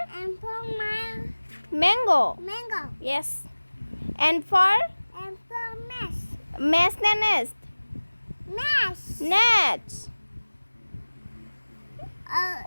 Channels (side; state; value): both; inverted; correlation -1.00